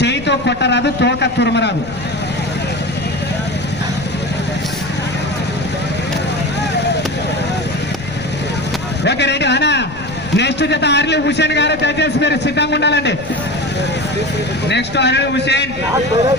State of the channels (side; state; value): left; noise; rumble, 14 dB below the sound